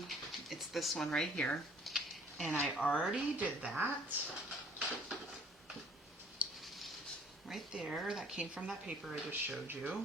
It's this one right here. And I already did that. Right there, that came from that paper I just showed you.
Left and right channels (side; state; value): both; normal; correlation 0.56